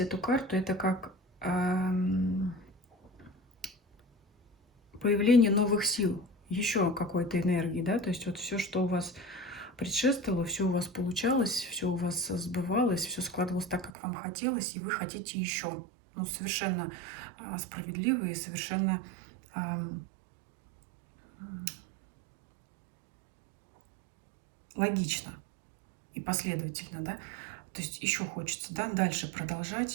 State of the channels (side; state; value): left; drops out; at 13.9 s